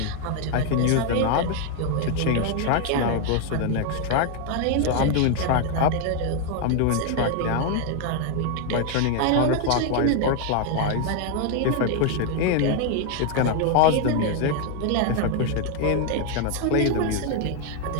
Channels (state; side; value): different; both; correlation 0.01